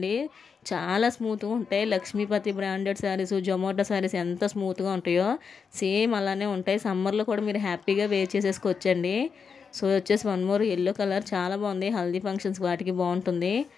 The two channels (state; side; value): quieter; right; 5.9 dB